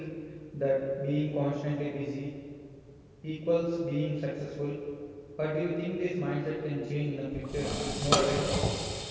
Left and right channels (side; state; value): both; identical; correlation 1.00